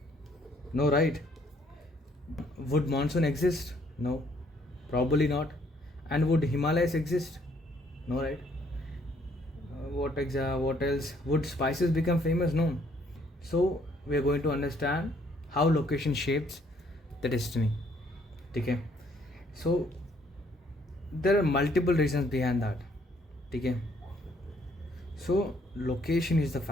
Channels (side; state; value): both; normal; correlation 0.66